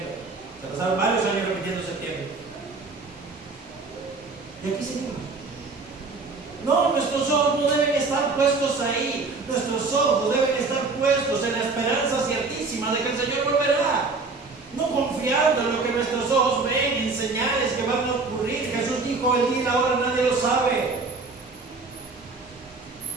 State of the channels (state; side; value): quieter; left; 4.0 dB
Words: pasaron varios años repitiendo septiembre. Y aquí seguimos. No, nuestros ojos no deben estar puestos ahí. Nuestros ojos deben estar puestos en la esperanza ciertísima de que el Señor volverá. No confiando en lo que nuestros ojos ven, en señales que van a ocurrir. Jesús dijo, el día y la hora nadie lo sabe.